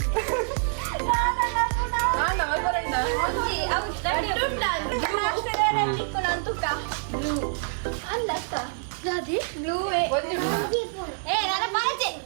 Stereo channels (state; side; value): silent; left; digital silence